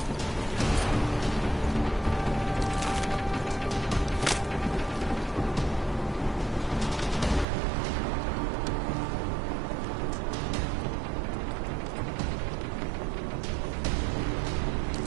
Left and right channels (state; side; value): drops out; left; at 7.5 s